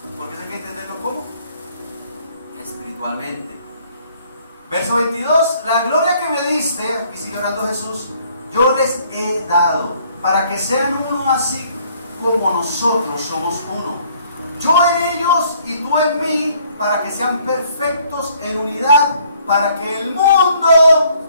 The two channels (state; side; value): inverted; both; correlation -0.62